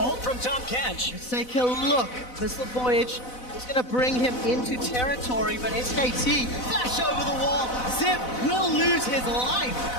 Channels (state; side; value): late; right; 4.0 ms